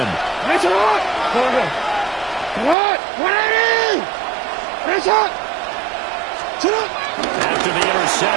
That's it. What? 180. That's it. After the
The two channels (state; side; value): drops out; left; at 2.8 s